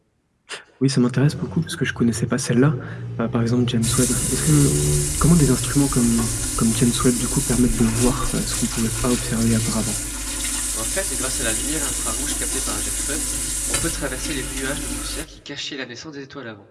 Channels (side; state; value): both; identical; correlation 1.00